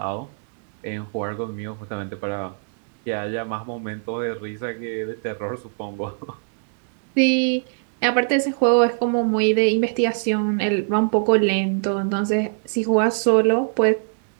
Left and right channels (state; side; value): silent; left; digital silence